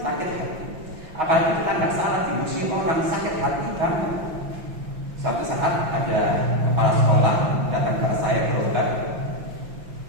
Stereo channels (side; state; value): left; late; 5.8 ms